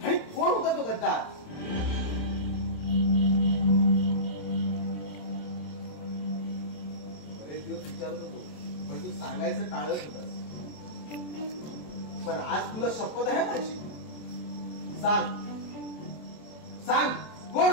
आणि कोण होता तो गद्दार? बरेच दिवस विचारत होतो, पण तू सांगायचं टाळत होतास. पण आज तुला शपथ आहे माझी. सांग सांग, कोण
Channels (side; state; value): right; late; 27 ms